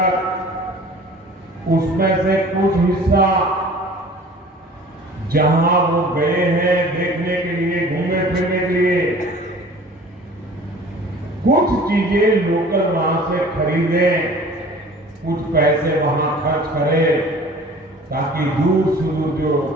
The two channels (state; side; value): normal; both; correlation 0.46